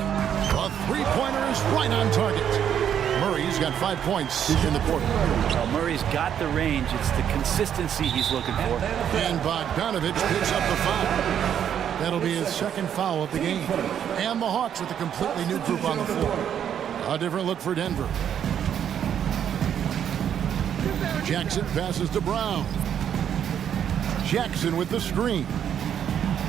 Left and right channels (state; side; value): quieter; left; 9.1 dB